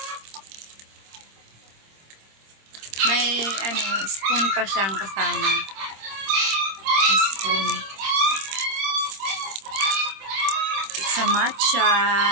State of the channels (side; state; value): left; late; 26 ms